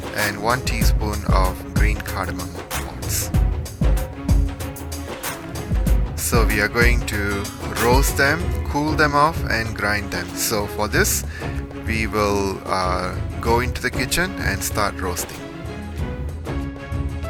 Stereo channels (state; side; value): identical; both; correlation 1.00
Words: and 1 teaspoon of green cardamom pods. So we are going to roast them, cool them off, and grind them. So for this, we will go into the kitchen and start roasting.